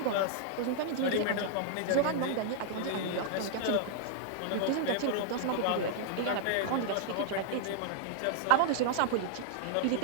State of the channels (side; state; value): both; different; correlation -0.01